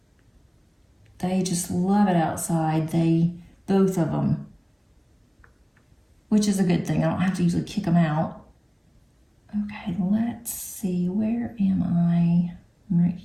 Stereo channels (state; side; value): identical; both; correlation 1.00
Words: They just love it outside. Both of them, which is a good thing. I don't have to usually kick them out. Okay, let's see. Where am I? I'm right